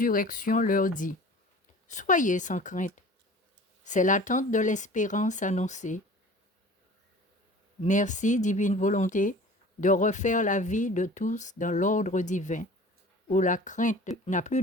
leur dit : Soyez sans crainte, c'est l'attente de l'espérance annoncée. Merci, divine volonté, de refaire la vie de tous dans l'ordre divin, où la crainte n'a plus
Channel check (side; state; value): both; normal; correlation 0.43